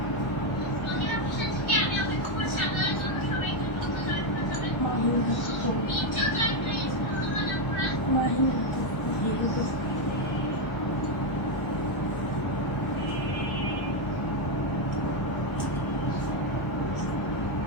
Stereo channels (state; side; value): late; right; 1.1 ms